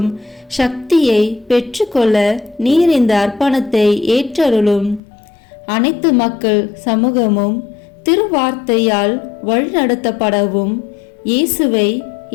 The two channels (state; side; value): drops out; right; at 5.0 s